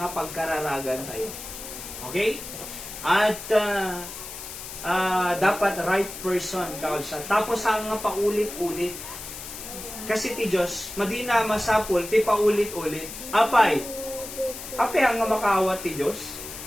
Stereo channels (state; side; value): noise; left; hiss, 10 dB below the sound